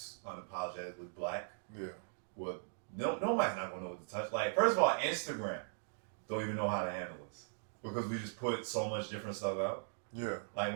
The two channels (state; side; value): silent; left; digital silence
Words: unapologetically black. Yeah. Well, nobody's not gonna know what to touch. Like, first of all, Instagram don't even know how to handle this because we just put so much different stuff out. Yeah. Like,